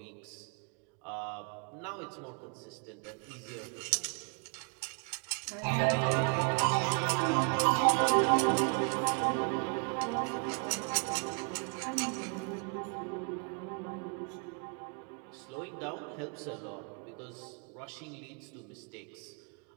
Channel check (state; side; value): quieter; left; 38.9 dB